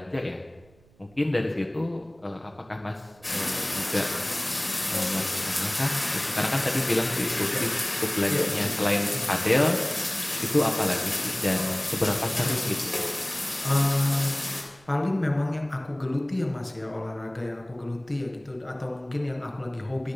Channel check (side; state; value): right; noise; rumble, 29 dB below the sound